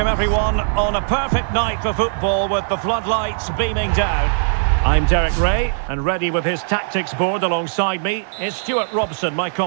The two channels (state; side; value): silent; left; digital silence